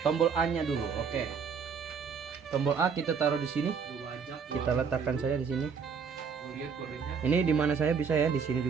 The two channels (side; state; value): left; quieter; 6.1 dB